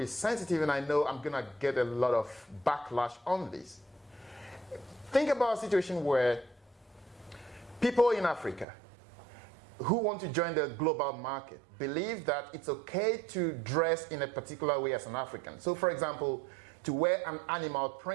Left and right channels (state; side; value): drops out; left; at 8.7 s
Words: sensitive, and I know I'm going to get a lot of backlash on this. Think about a situation where people in Africa who want to join the global market believe that it's okay to dress in a particular way as an African. So, for example, to wear an animal